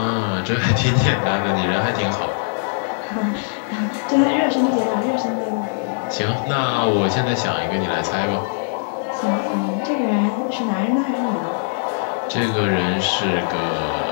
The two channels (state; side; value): silent; right; digital silence